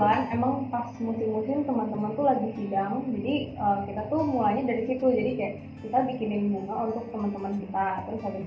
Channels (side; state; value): both; identical; correlation 1.00